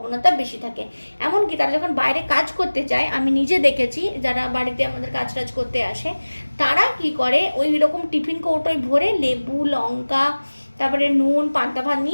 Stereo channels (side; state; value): both; inverted; correlation -1.00